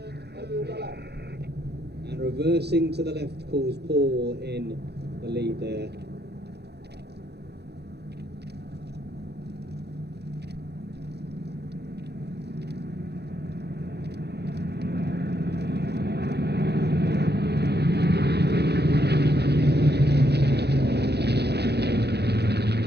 And reversing to the left calls Paul in the lead there.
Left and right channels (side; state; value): left; late; 0.48 ms